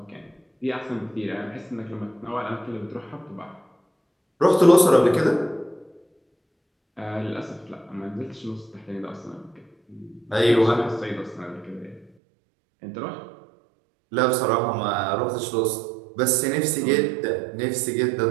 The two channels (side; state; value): left; drops out; at 12.1 s